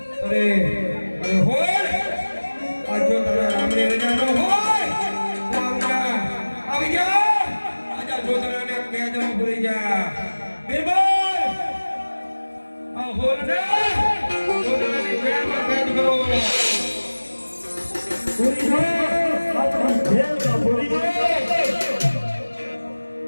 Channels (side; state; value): both; inverted; correlation -1.00